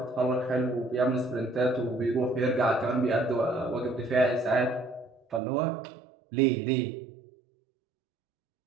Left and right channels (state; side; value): drops out; left; at 5.4 s